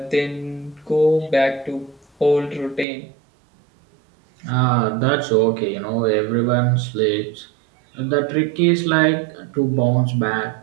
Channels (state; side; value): drops out; left; at 2.9 s